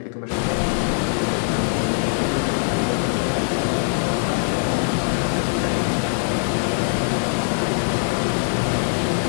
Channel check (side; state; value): right; silent; digital silence